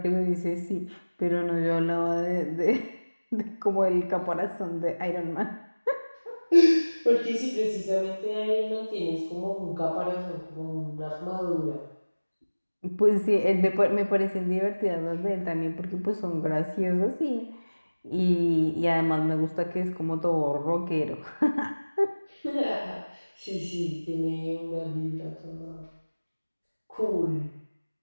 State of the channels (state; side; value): inverted; both; correlation -1.00